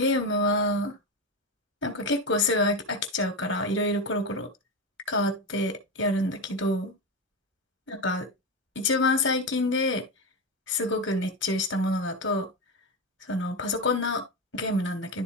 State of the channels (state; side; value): normal; both; correlation 0.16